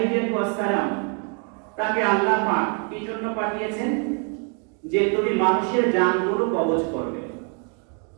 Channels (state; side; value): quieter; left; 39.2 dB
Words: সালাম তাকে আল্লাহ পাক কি জন্য পাঠিয়েছেন? যে তুমি মানুষের জানগুলো কবজ করবে।